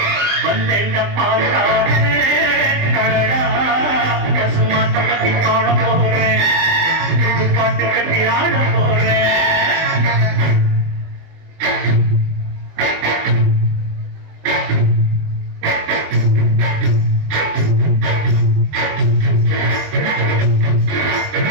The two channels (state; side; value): late; left; 20 ms